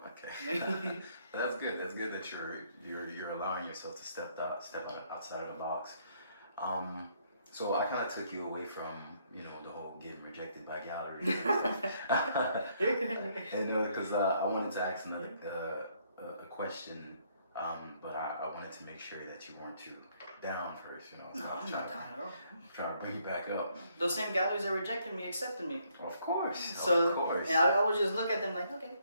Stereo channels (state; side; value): inverted; both; correlation -0.69